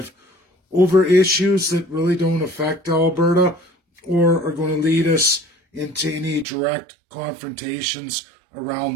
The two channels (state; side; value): drops out; left; at 6.5 s